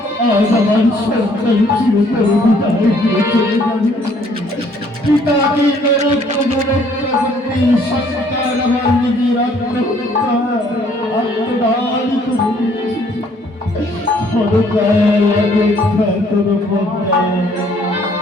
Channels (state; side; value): normal; both; correlation 0.62